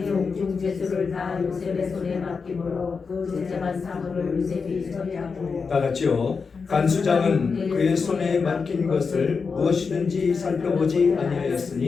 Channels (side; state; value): right; quieter; 5.1 dB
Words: 옥중 제수를 다 요셉의 손에 맡김으로 그 제재한 사물을 요셉이 처리하고 다 같이요. 간수장은 그의 손에 맡긴 것을 무엇이든지 살펴보지